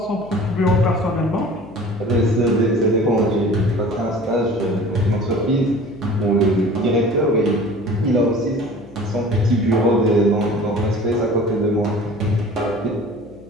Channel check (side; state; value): left; noise; hum, 21 dB below the sound